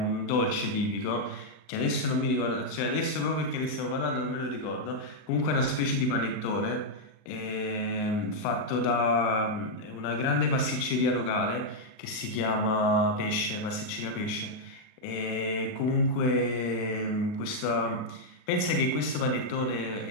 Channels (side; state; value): right; late; 39 ms